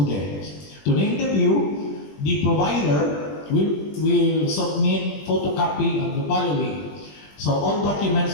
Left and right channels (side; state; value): right; late; 20 ms